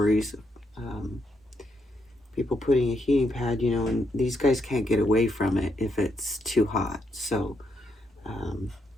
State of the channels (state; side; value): normal; both; correlation 0.78